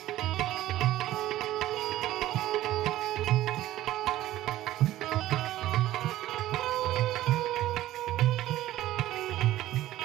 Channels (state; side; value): quieter; left; 14.7 dB